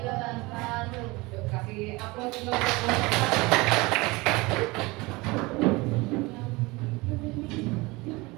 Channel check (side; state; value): left; quieter; 23.3 dB